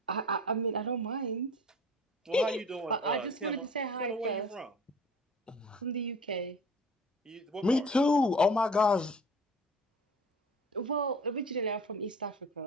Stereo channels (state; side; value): normal; both; correlation 0.43